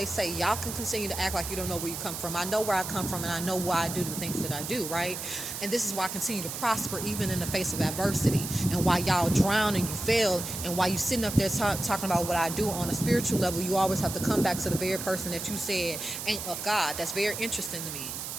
say. Y'all can continue to act like you don't know where you come from. I know where I come from, and I know why I do the things that I do, right? And this is why I continue to prosper even in the face of adversity. And why y'all drown and you fail. And why you sitting up there talking about what I do on a spiritual level. You always have to come back to the very person that you said ain't of God. That's very interesting to me.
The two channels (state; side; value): noise; right; hiss, 6 dB below the sound